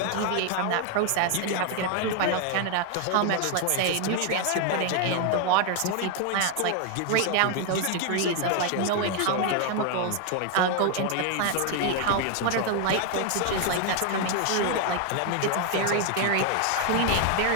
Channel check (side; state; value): both; different; correlation 0.00